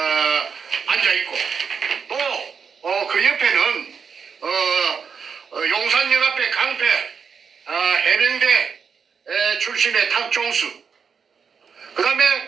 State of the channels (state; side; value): quieter; left; 6.3 dB